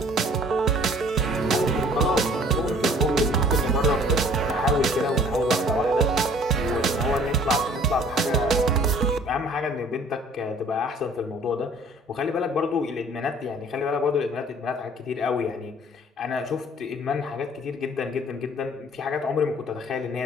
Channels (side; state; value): both; normal; correlation 0.53